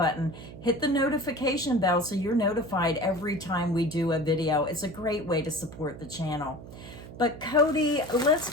hit the notification bell so you're notified every time we do a video. It's a great way to support the channel. But Cody, let's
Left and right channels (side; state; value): right; noise; hum, 14 dB below the sound